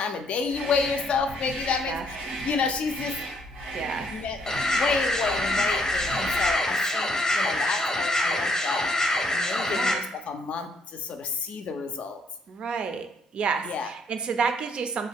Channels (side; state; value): both; normal; correlation 0.68